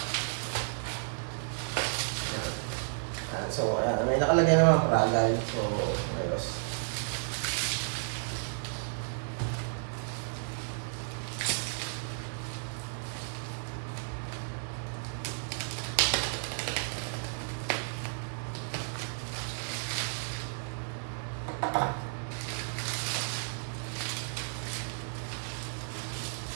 So, may nakalagay naman ang Pragal. So, ayos.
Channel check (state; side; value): silent; left; digital silence